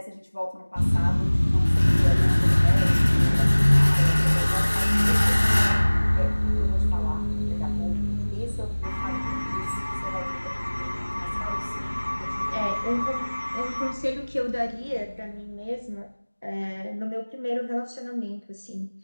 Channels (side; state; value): both; inverted; correlation -1.00